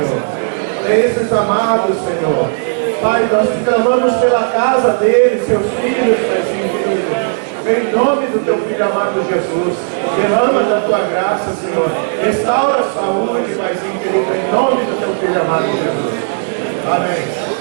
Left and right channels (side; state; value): left; silent; 70 dB below the other